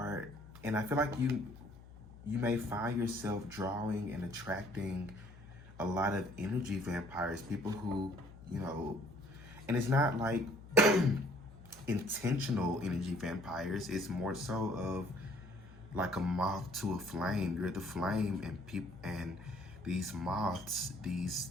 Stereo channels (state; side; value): noise; left; hum, 18 dB below the sound